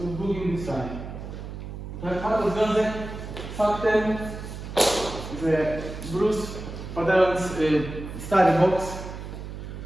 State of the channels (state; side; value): noise; right; hum, 9 dB below the sound